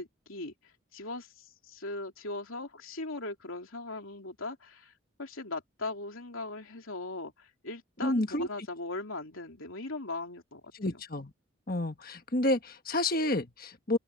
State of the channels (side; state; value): both; normal; correlation 0.22